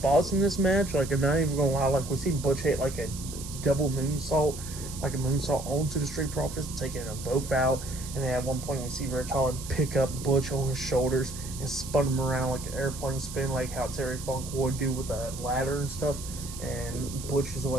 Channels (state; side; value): noise; right; hiss, 12 dB below the sound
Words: in this match. Like, I'm not even gonna lie, like, we see Butch hit, like, a double moonsault, like a moonsault onto the Street Profits, taking them both out. And then at one point, we see Rich Holland pick up Butch on his shoulders and spun him around like an airplane spin, like how Terry Funk would do with a ladder and stuff. And Butch's